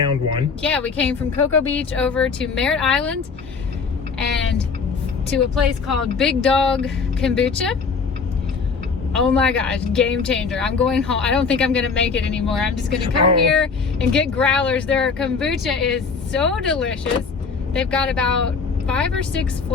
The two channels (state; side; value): quieter; right; 5.1 dB